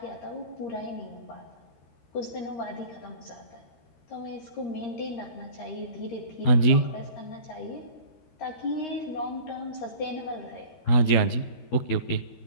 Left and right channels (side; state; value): right; late; 13 ms